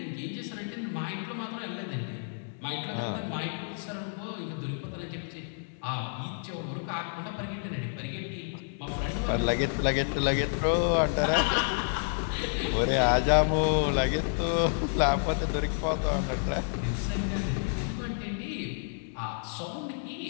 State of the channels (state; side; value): silent; right; digital silence